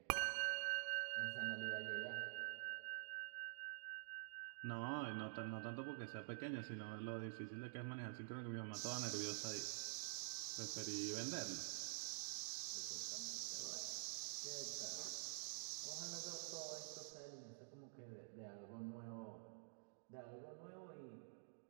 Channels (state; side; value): silent; left; digital silence